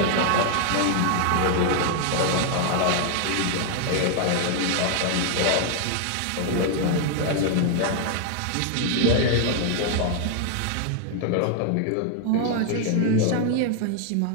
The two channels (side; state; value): both; different; correlation 0.00